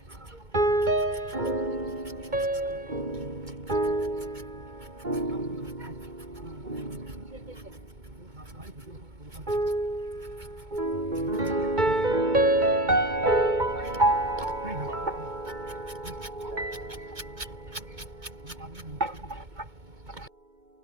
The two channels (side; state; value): left; late; 2.2 ms